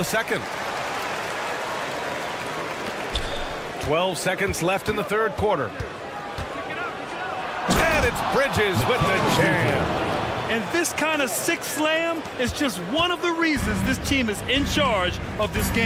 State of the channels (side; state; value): both; identical; correlation 1.00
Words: second. 12 seconds left in the third quarter. And it's Bridges with the jam. And this kind of sick slam is just one of the reasons this team is in charge of this